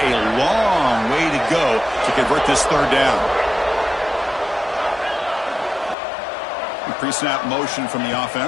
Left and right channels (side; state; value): right; drops out; at 6.0 s